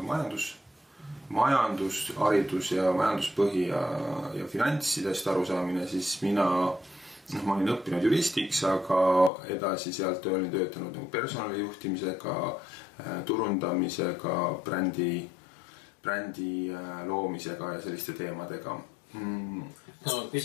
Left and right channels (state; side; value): drops out; right; at 9.3 s